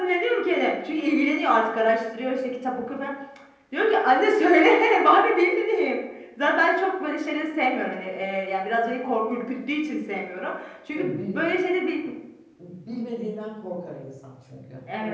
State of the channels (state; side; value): identical; both; correlation 1.00